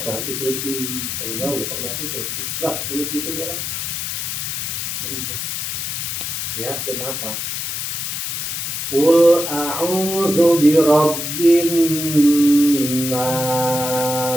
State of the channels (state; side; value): noise; left; hiss, 3 dB below the sound